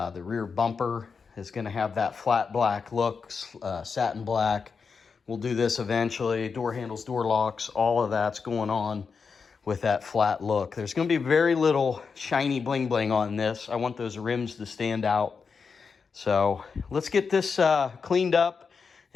rear bumper is gonna have that flat black look, satin black. We'll do this eventually. Door handles, door locks, all of that's going on with that flat look. There's gonna be very little shiny bling bling on this. I want those rims to stand out. So let's get this cleaned up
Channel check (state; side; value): quieter; right; 5.4 dB